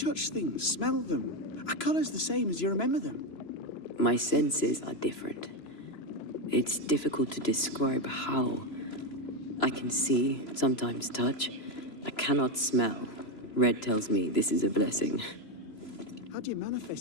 things, smell them? Are colours the same as you remember them? My senses are different. It's difficult to describe how. I can see, sometimes touch. I cannot smell. Red tells me this is a blessing. How do you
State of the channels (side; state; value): right; late; 3.0 ms